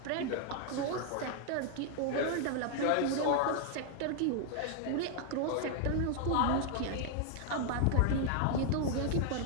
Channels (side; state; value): both; different; correlation 0.00